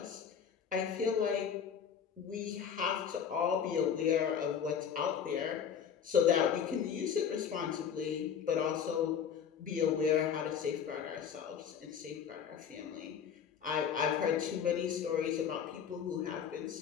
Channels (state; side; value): quieter; right; 7.7 dB